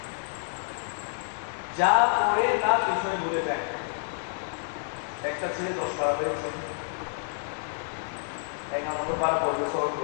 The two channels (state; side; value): silent; right; digital silence